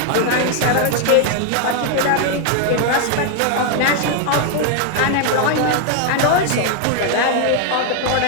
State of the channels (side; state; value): both; different; correlation 0.01